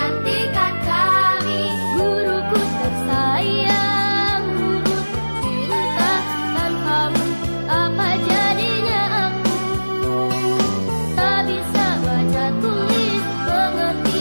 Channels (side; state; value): both; inverted; correlation -1.00